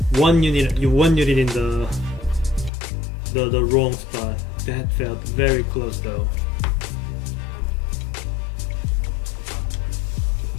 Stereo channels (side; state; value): right; drops out; at 2.7 s